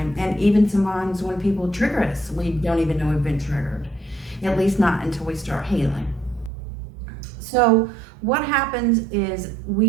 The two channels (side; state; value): left; drops out; at 6.5 s